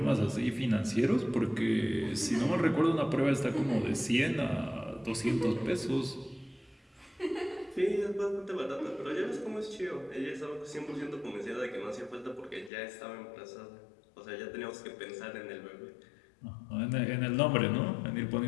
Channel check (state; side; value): drops out; right; at 12.7 s